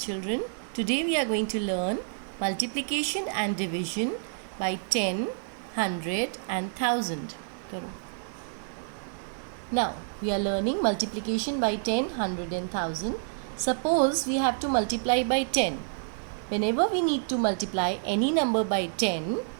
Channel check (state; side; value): silent; left; 59 dB below the other